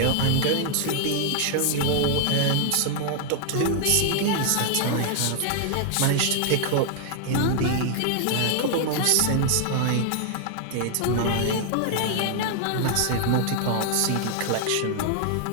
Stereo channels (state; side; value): different; both; correlation 0.00